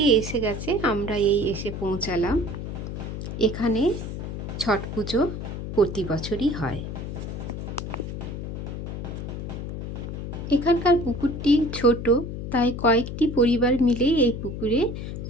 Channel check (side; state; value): left; noise; hum, 6 dB below the sound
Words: এসে গেছে, আমরা এই এসে পৌঁছালাম। এখানে ছট পুজো প্রতি বছরই হয়। এখানকার পুকুরটি ছোট, তাই কয়েকটি পরিবার মিলেই এই পুকুরে